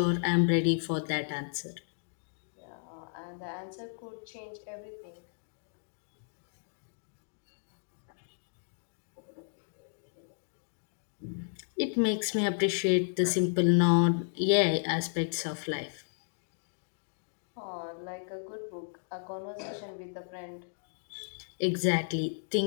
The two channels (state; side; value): silent; right; digital silence